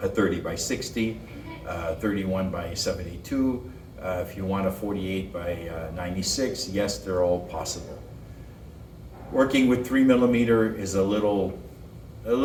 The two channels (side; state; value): both; identical; correlation 1.00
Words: a 30x60, 31x72, if you want a 48x96, yes, they're all possible. Working with 3 millimeter is a little